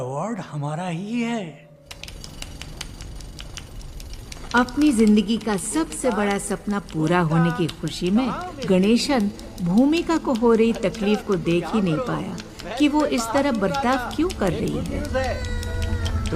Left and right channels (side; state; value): both; identical; correlation 1.00